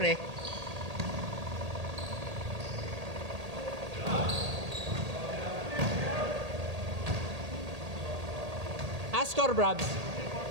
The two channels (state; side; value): late; left; 1.8 ms